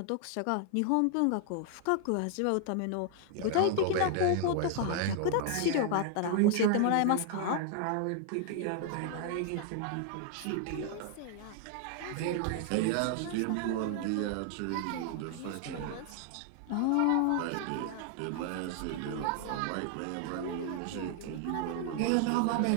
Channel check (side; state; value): both; different; correlation 0.00